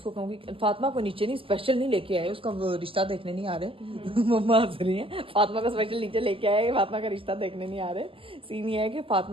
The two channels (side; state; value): left; late; 0.26 ms